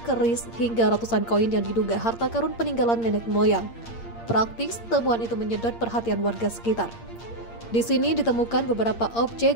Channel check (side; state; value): right; late; 8.7 ms